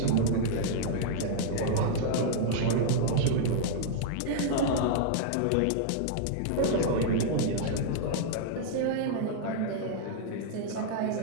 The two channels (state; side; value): different; both; correlation -0.01